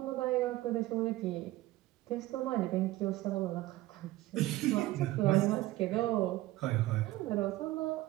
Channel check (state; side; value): quieter; left; 17.1 dB